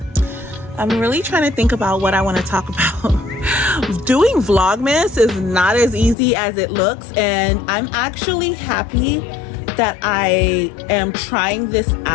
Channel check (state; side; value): drops out; right; at 6.2 s